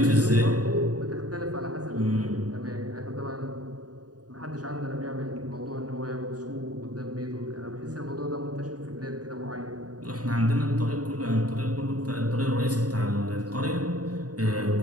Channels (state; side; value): late; left; 0.68 ms